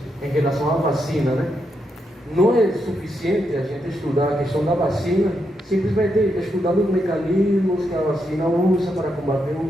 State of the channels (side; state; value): both; normal; correlation 0.82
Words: em relação à vacina, né? Não é suficiente a gente estudar a questão da vacina, simplesmente estudando os mecanismos que a vacina usa para combater